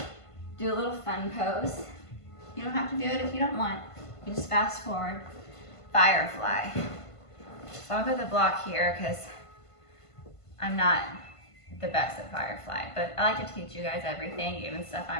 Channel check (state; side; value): late; right; 1.5 ms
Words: do a little fun pose. You don't have to do it if you don't want. You just fast forward. Firefly. So I'll put the block here because I'm not the best at firefly, but I like to teach you guys everything, even stuff